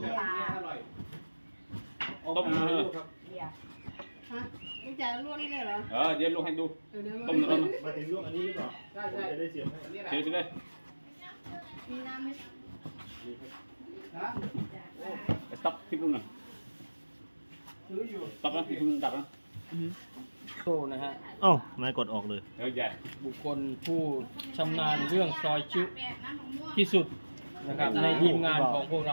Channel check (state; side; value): inverted; both; correlation -1.00